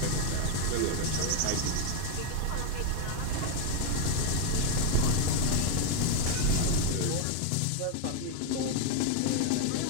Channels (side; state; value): both; different; correlation 0.01